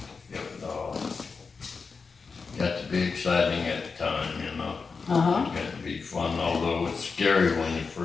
got to be exciting at the time, you know. It got to be fun, although it's scary when you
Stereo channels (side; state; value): right; quieter; 4.9 dB